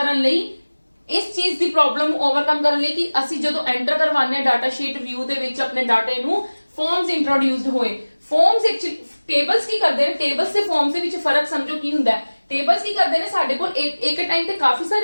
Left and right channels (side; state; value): both; inverted; correlation -1.00